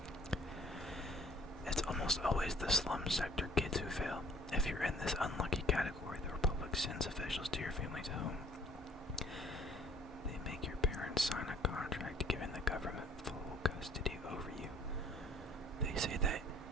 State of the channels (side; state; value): both; normal; correlation 0.56